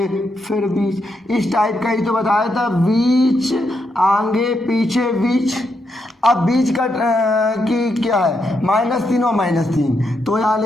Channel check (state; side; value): normal; both; correlation 0.81